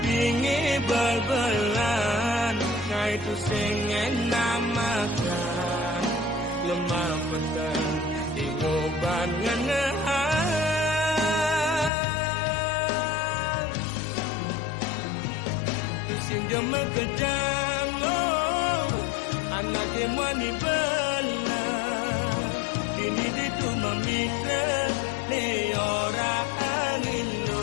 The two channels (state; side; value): drops out; right; at 11.9 s